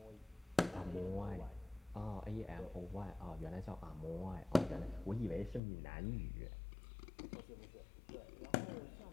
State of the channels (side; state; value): right; drops out; at 5.6 s